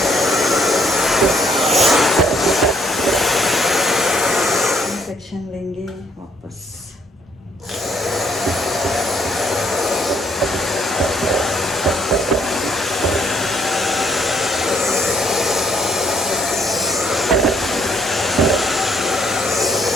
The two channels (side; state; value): both; normal; correlation 0.68